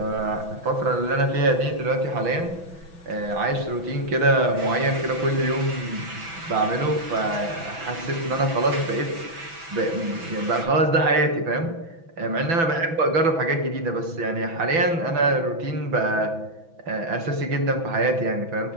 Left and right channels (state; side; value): late; left; 6.0 ms